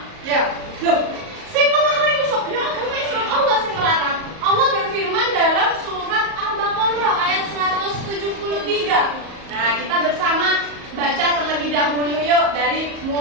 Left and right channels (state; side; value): late; left; 38 ms